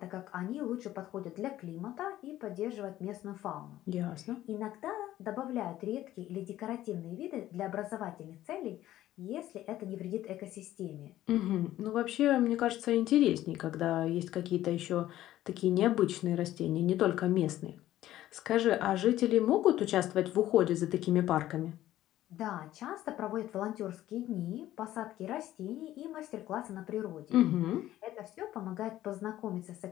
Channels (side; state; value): right; quieter; 13.9 dB